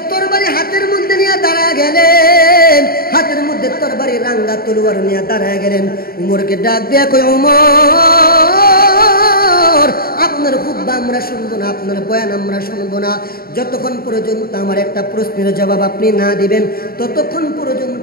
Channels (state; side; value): late; right; 0.43 ms